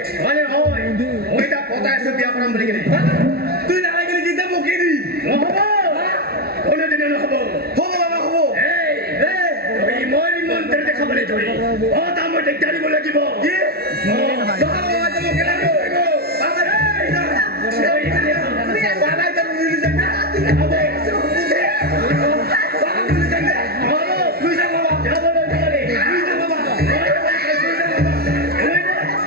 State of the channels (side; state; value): left; late; 0.45 ms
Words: মানে হয় মই তাক পতাই আছো বিয়া কৰাম বুলি কিনে তুই নালাগে গেলি কিতা বকি দি নহ'ব কোনোদিনে নহ'ব হ'ব বাবা হ'ব এই তই মই মন্ত্ৰী দেখাবলৈ ধৰি তাৰ মই দিগদাৰ দিব লাগিব কি বাবা বাবা তো বকি লাগি বাবা এই বাবা তো মিলি যায় না হ'ব বাবা মিলি যায় না হ'ব তুই যা বাবা যাবলৈ নোৱাৰি তুই যা